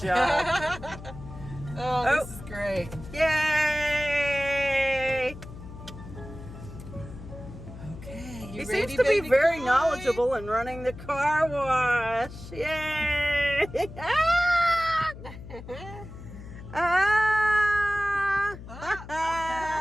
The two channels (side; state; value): left; noise; hum, 14 dB below the sound